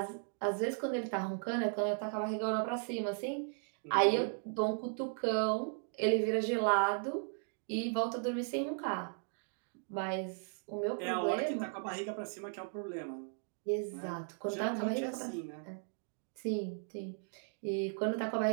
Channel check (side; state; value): left; silent; 53 dB below the other